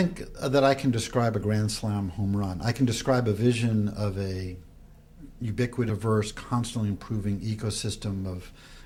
that I can describe a grand slam home run. I can describe a vision of a ubiquitous, constantly improving ecosystem of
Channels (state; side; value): identical; both; correlation 1.00